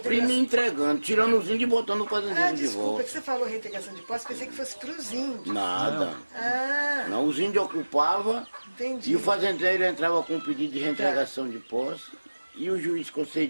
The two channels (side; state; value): both; inverted; correlation -1.00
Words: e entregando, tirando os índios e botando o fazendeiro de desculpa, volta. que você falou reintegração de posse, pensei que fosse para os índios. Nada. Ah. Não, os índios ocupavam. Entendi. E o fazendeiro entrava com um pedido de reintegração de posse e o juiz